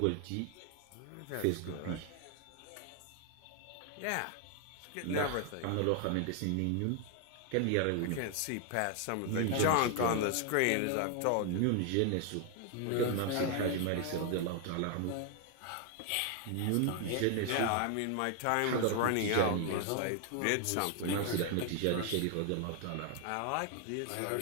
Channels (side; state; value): both; different; correlation 0.00